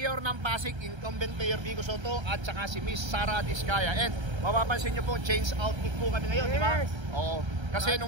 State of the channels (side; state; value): left; late; 1.3 ms